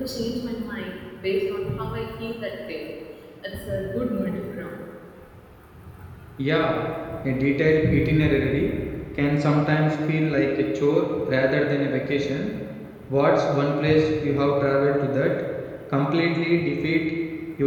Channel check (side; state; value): both; identical; correlation 1.00